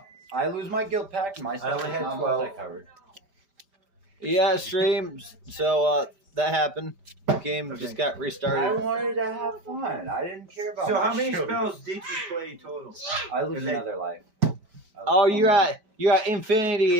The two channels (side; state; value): left; late; 5.1 ms